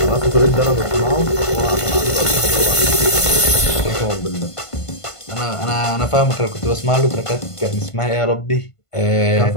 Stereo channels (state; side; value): late; right; 1.5 ms